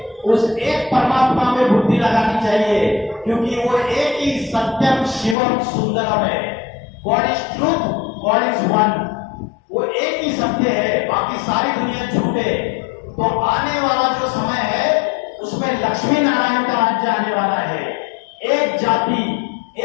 उस एक परमात्मा में बुद्धि लगानी चाहिए, क्योंकि वो एक ही सत्यम शिवम सुंदरम है। God is truth, God is one. वो एक ही सत्य है, बाकी सारी दुनिया झूठे। तो आने वाला जो समय है उसमें लक्ष्मी नारायण का राज्य आने वाला है। एक जाति,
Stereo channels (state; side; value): drops out; right; at 5.4 s